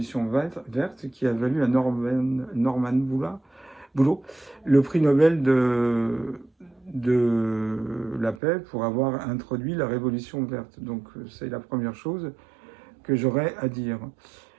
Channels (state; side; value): drops out; left; at 8.4 s